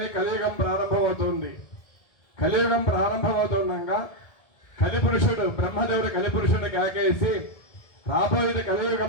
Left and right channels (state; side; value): late; right; 1.7 ms